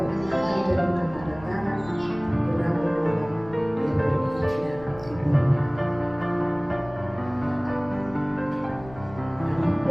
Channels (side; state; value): left; noise; rumble, 18 dB below the sound